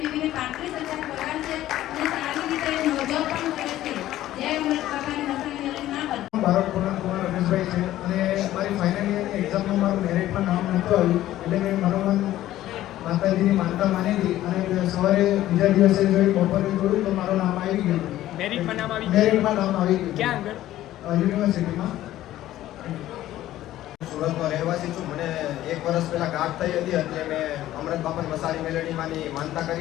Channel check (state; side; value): quieter; right; 14.1 dB